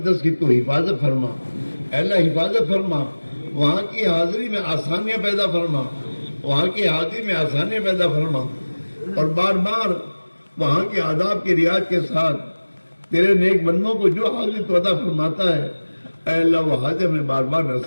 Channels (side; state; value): both; inverted; correlation -1.00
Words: کی تو حفاظت فرما، اے اللہ حفاظت فرما، وہاں کی حاضری میں آسانیاں پیدا فرما، وہاں کی حاضری میں آسانیاں پیدا فرما، اور بار بار وہاں کے آداب کی رعایت کے ساتھ تیرے نیک بندوں کو جو حاضری تو عطا فرماتا ہے اے اللہ وہ حاضر میں بار بار